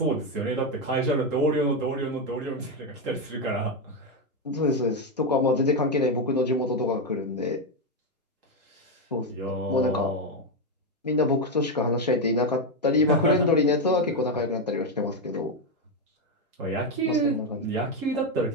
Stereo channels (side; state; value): both; normal; correlation 0.07